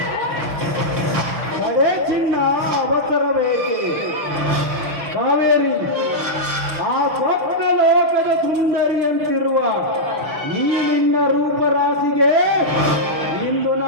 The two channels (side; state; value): left; late; 6.7 ms